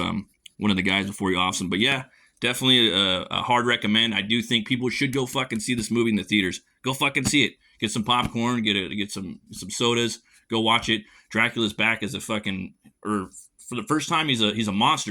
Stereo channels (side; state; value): both; identical; correlation 1.00